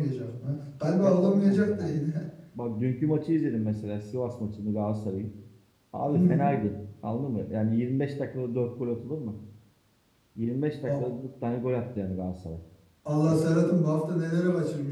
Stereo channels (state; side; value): identical; both; correlation 1.00